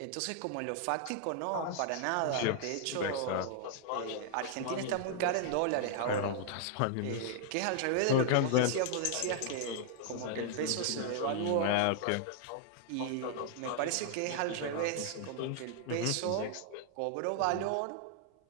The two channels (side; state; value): both; different; correlation -0.01